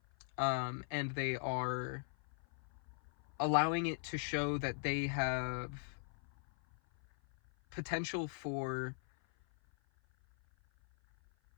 And they are allowing it to show that they have potential for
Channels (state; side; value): silent; right; 52 dB below the other